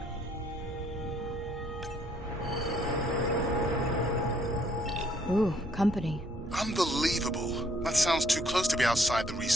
Ooh, company. Unbelievable. That sounds too close to be outside the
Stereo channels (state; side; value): normal; both; correlation 0.66